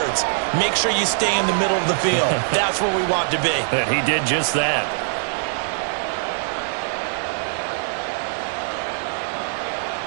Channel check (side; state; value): left; silent; digital silence